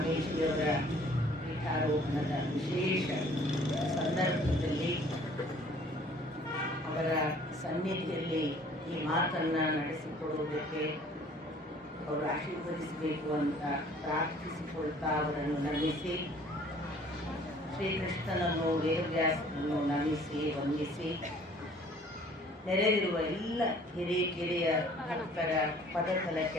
ಪೀಠಾರೋಹಣದ ವಿಶೇಷ ಸಂದರ್ಭದಲ್ಲಿ ಅವರ ಸನ್ನಿಧಿಯಲ್ಲಿ ಈ ಮಾತನ್ನು ನಡೆಸಿಕೊಡುವುದಕ್ಕೆ ಅವರು ಆಶೀರ್ವದಿಸಬೇಕು ಅಂತ ಪ್ರಾರ್ಥಿಸಿಕೊಳ್ತಾ ಅವರನ್ನು ನಮಿಸಿ, ಶ್ರೀಕೃಷ್ಣನನ್ನು ವೇದವ್ಯಾಸನನ್ನು ನಮಿಸಿ ವಂದಿಸಿ, ನೆರೆದಿರುವ ಎಲ್ಲ ಹಿರಿಯ ಭಕ್ತರ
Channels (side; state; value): both; normal; correlation 0.54